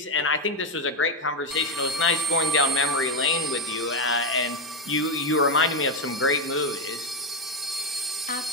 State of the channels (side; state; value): both; normal; correlation 0.07